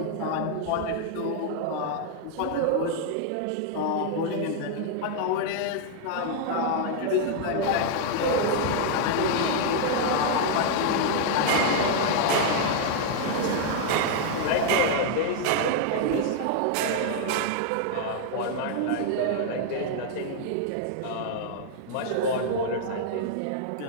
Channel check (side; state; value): both; different; correlation 0.00